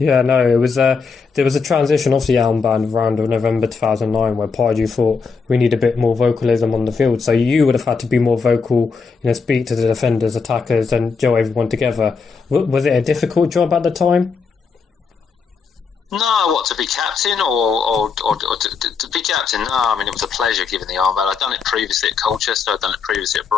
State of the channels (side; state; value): right; quieter; 5.2 dB